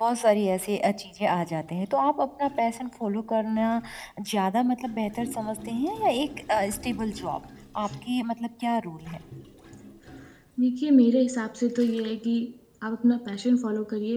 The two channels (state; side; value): identical; both; correlation 1.00